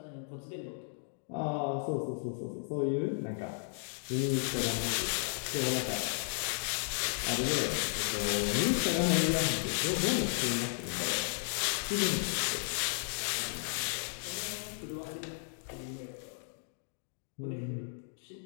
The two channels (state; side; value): silent; right; digital silence